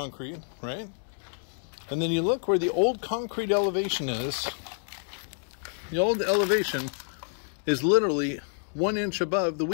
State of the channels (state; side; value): silent; right; 56 dB below the other